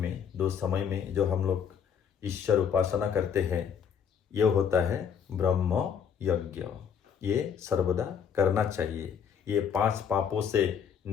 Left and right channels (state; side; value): quieter; right; 7.6 dB